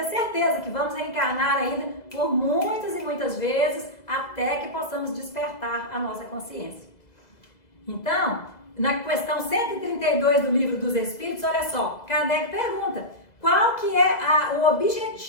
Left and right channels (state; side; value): late; right; 2.0 ms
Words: certeza que vamos reencarnar ainda por muitas e muitas vezes até que possamos despertar a nossa consciência. Então, na questão 132 do Livro dos Espíritos, olha só, Kardec pergunta, qual que é o